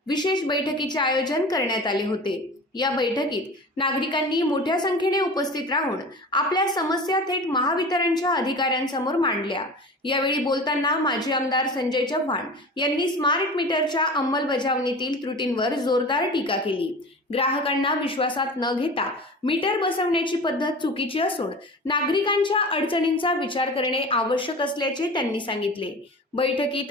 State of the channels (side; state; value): both; normal; correlation 0.36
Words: विशेष बैठकीचे आयोजन करण्यात आले होते। या बैठकीत नागरिकांनी मोठ्या संख्येने उपस्थित राहून आपल्या समस्या थेट महावितरणच्या अधिकाऱ्यांसमोर मांडल्या। यावेळी बोलताना माजी आमदार संजय चव्हाण यांनी स्मार्ट मीटरच्या अंमलबजावणीतील त्रुटींवर जोरदार टीका केली। ग्राहकांना विश्वासात न घेता मीटर बसवण्याची पद्धत चुकीची असून नागरिकांच्या अडचणींचा विचार करणे आवश्यक असल्याचे त्यांनी सांगितले। बैठकीत